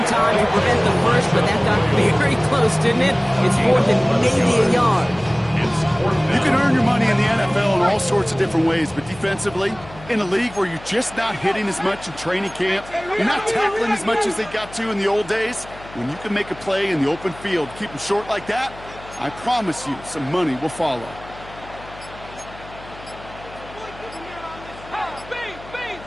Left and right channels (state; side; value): noise; left; hum, 18 dB below the sound